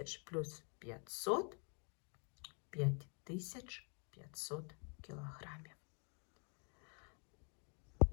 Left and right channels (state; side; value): quieter; right; 38.3 dB